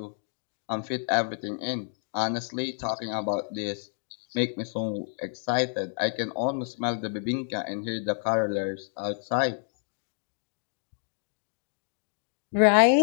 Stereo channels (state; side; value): silent; right; digital silence